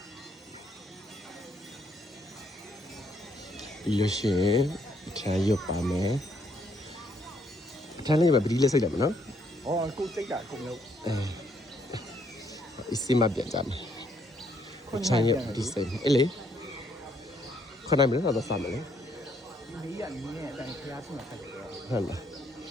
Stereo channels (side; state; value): both; normal; correlation 0.71